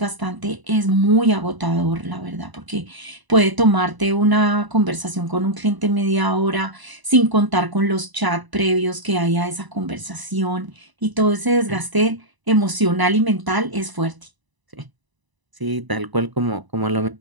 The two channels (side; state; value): left; late; 1.0 ms